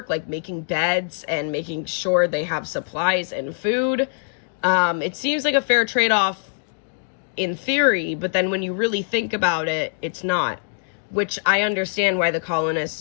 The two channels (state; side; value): silent; right; digital silence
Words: like making beds and making sure they have supplies and food. It seems like a fair trade-off in theory, but then when you really think about it, it's not. Which I understand why the